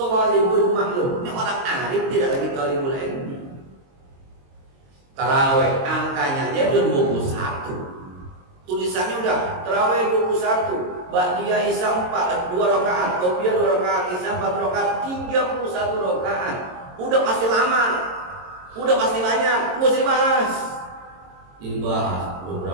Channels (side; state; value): left; late; 22 ms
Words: maklum, ini orang arif tidak lagi talibul ilmi. Taraweh angkanya aja udah 21. Tulisannya udah taraweh 21. Ba'diyah Isya 2 rakaat, Qobliyah 2 rakaat, Isya 4 rakaat, 31 rakaat. Udah pasti lama. Udah pasti banyak, mesti dibahas. Dibahas